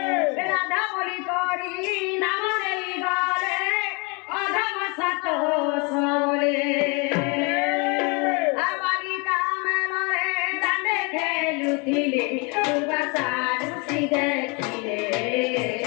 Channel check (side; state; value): right; quieter; 30.8 dB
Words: बोली करी नाम रे गले अधम सतो सोले आवाली कामल रे दांडे खेलुथिले दुर्वासारुसी देखिले